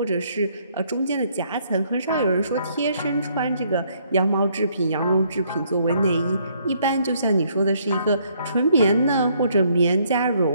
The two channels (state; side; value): inverted; both; correlation -0.68